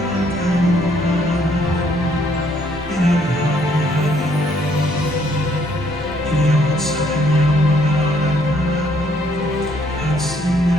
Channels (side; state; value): both; normal; correlation 0.67